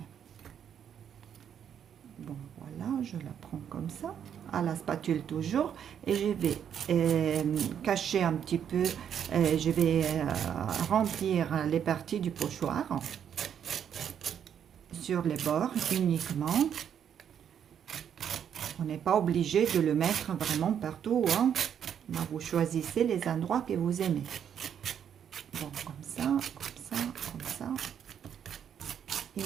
Bon, voilà, je la prends comme ça, à la spatule toujours, et je vais cacher un petit peu, je vais remplir les parties du pochoir sur les bords uniquement. On n'est pas obligé de le mettre vraiment partout, hein. Vous choisissez les endroits que vous aimez. Bon, comme ça, comme ça, comme ça. Et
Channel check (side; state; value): left; quieter; 8.7 dB